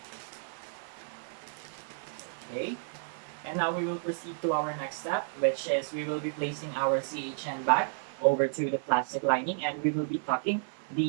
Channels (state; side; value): silent; left; digital silence